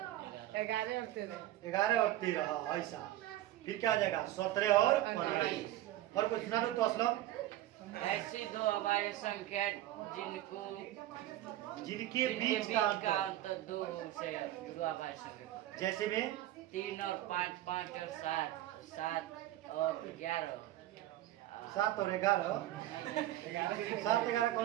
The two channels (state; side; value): quieter; left; 14.5 dB